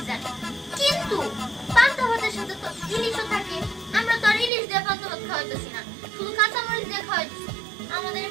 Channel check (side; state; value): left; drops out; at 4.5 s